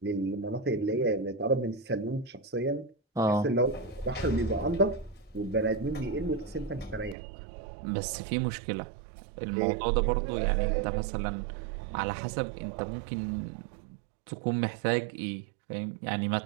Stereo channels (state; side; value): drops out; left; at 7.2 s